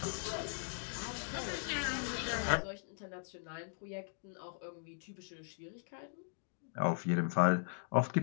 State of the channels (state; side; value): silent; right; digital silence